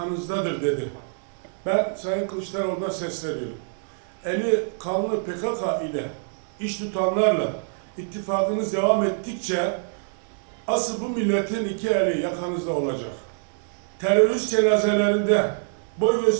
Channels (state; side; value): silent; left; digital silence